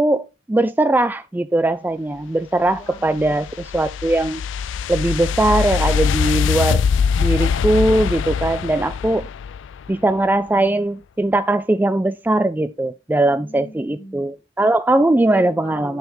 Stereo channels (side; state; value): both; normal; correlation 0.81